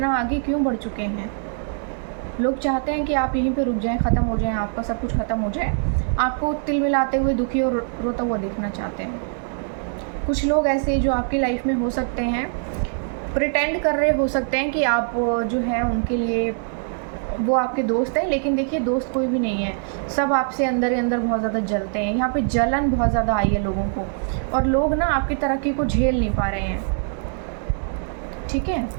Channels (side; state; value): left; silent; digital silence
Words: आगे क्यों बढ़ चुके हैं। लोग चाहते हैं कि आप यहीं पे रुक जाएं, ख़त्म हो जाएं, आपका सब कुछ ख़त्म हो जाए, आपको तिल मिलाते हुए दुखी और रोता हुआ देखना चाहते हैं। कुछ लोग ऐसे जो आपकी लाइफ में हो सकते हैं, प्रिटेंड कर रहे हो सकते हैं कि आप जो है उनके लिए वो आपके दोस्त हैं, लेकिन देखिए दोस्त कोई भी नहीं है, सब आपसे अंदर ही अंदर बहुत ज़्यादा जलते हैं। यहाँ पे जलन बहुत ज़्यादा आई है लोगों को, और लोग ना आपकी तरक्की को झेल नहीं पा रहे हैं। ठीक है,